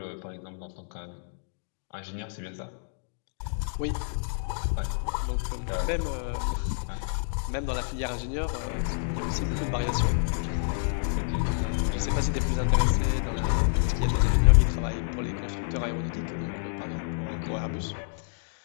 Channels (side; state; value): right; silent; digital silence